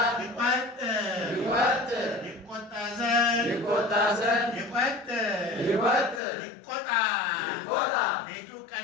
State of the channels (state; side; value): drops out; right; at 6.2 s